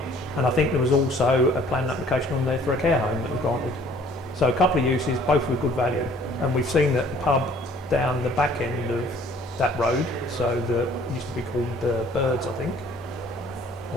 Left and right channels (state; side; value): normal; both; correlation 0.56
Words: And I think there was also a planning application on there for a care home that was granted. So a couple of uses, both with good value. And we've seen that the pub down the back end of that road, so it used to be called the Birds, I think,